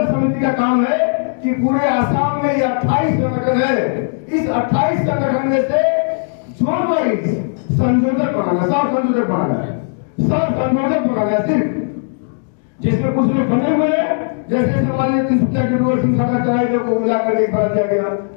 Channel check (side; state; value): right; silent; digital silence